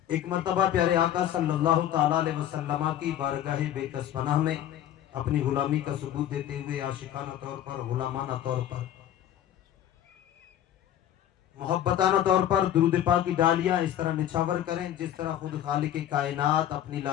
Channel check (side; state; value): right; quieter; 11.3 dB